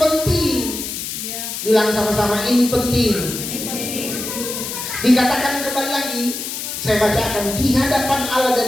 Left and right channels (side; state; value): left; noise; hiss, 6 dB below the sound